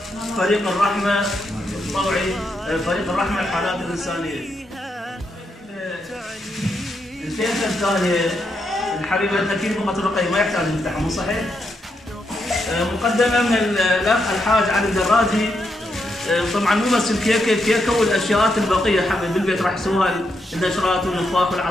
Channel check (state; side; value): normal; both; correlation 0.81